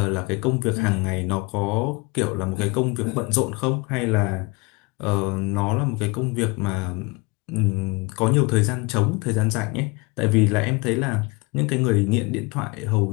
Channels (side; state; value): right; quieter; 26.7 dB